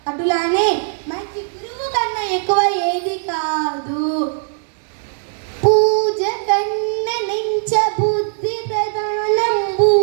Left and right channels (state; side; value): silent; left; 67 dB below the other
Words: అటులానే మంచి గురువు కన్నా ఎక్కువ ఏది కాదు. పూజ కన్న నెంచ బుద్ధి ప్రధానంబు,